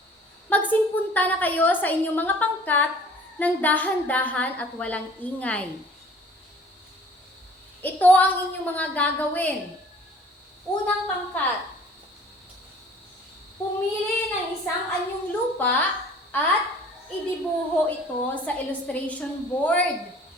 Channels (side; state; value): both; normal; correlation 0.51